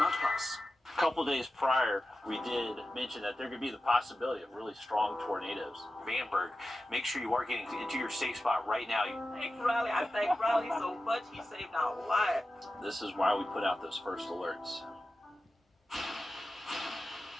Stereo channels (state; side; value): normal; both; correlation 0.93